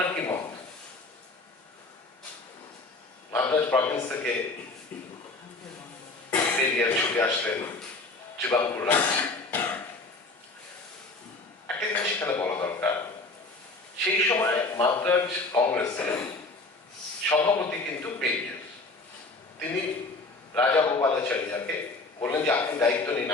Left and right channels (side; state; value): right; quieter; 3.3 dB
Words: কি মত? মাদ্রাজ প্রভিন্স থেকে পেরিয়ার ছুটে আসলেন ত্রিবাঙ্কুর রাজ্যে। একটা জিনিস এখানে বলা দরকার, সেই সময় মাদ্রাজ কংগ্রেসের সভাপতি কিন্তু পেরিয়ার। তিনি রাজা গোপালাচারিয়াকে বললেন যে আপনি দায়িত্ব নিন,